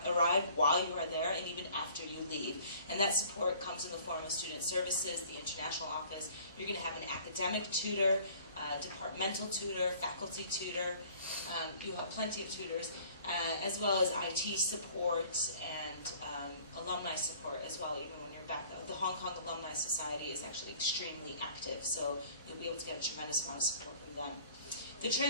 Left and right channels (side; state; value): both; inverted; correlation -0.52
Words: while you are there, and even after you leave. And that support comes in the form of student services, the international office. You're going to have an academic tutor. departmental tutor, faculty tutor. You have plenty of tutors, as well as IT support and alumni support as well, even when you're back. The Hong Kong Alumni Society is actually extremely active, so you'll be able to get a tremendous amount of support from them. The